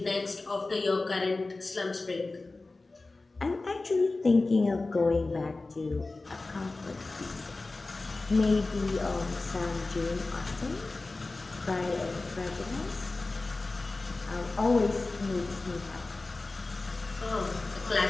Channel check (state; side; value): quieter; right; 3.4 dB